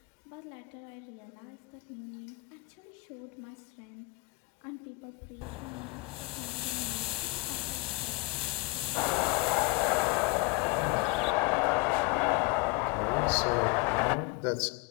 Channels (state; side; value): quieter; right; 26.2 dB